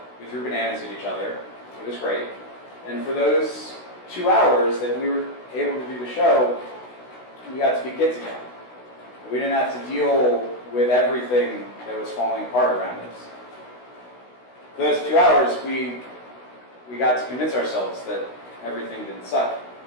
we threw bananas at each other. It was great. And for those 2 hours that we were able to do the show, we got to be kids again. We didn't have to deal with everything that was falling apart around us. For those 2 hours, we got to convince ourselves that everything didn't suck.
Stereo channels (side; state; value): right; late; 16 ms